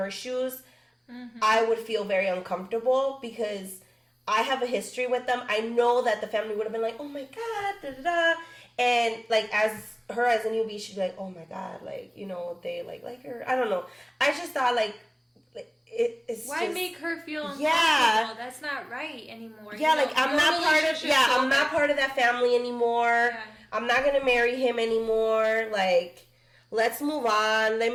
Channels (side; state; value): both; identical; correlation 1.00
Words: shoes, I would feel very uncomfortable because I have a history with them. I know that the family would have been like, oh my God, da da da. And like as a newbie, she'd be like, oh my God, like, they like her. I don't know. I just thought like it's why just, make her feel uncomfortable? Yeah, that's not right anymore. Yeah, like I'm not part of that family anymore. Yeah. I'm not gonna marry him anymore. Like, let's move on. Let